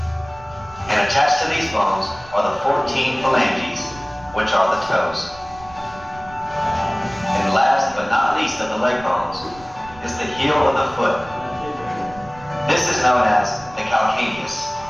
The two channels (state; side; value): noise; right; rumble, 20 dB below the sound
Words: And attached to these bones are the 14 phalanges, which are the toes. And last but not least of the leg bones is the heel of the foot. This is known as the calcaneus.